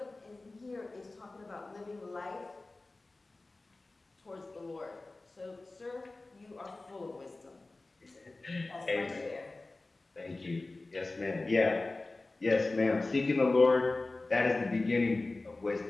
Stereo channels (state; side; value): quieter; right; 3.2 dB